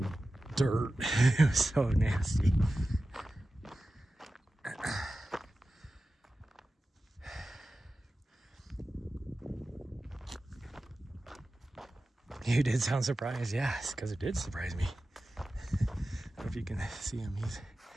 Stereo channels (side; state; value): both; normal; correlation 0.94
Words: dirt. It was so nasty. You did sound surprised, yes, because it did surprise me. I don't know if you can see him.